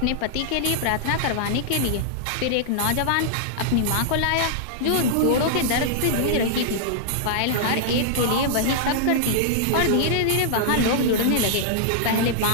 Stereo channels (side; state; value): both; different; correlation -0.01